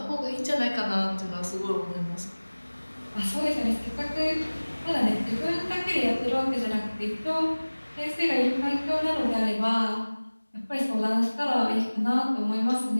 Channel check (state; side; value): inverted; both; correlation -1.00